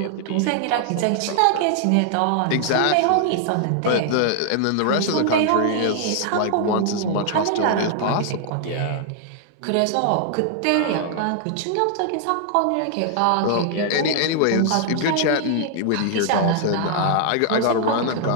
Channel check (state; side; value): different; both; correlation 0.00